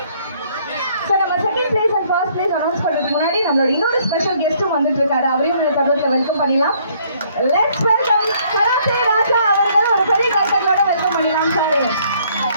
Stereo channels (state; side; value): inverted; both; correlation -0.64